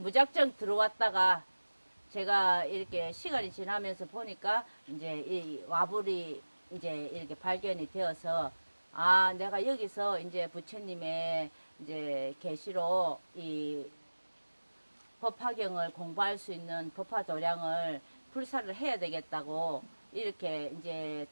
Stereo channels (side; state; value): both; inverted; correlation -1.00